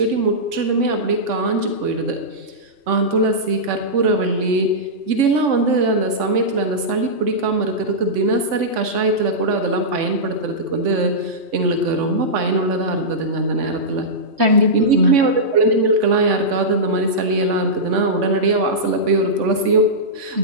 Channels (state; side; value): late; left; 3.5 ms